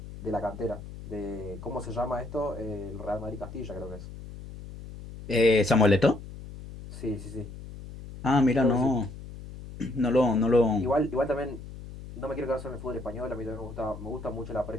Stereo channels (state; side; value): noise; left; hum, 13 dB below the sound